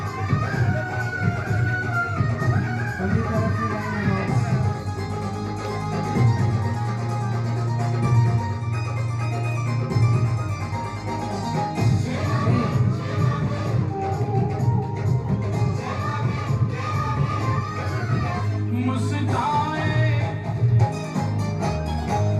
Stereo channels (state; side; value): identical; both; correlation 1.00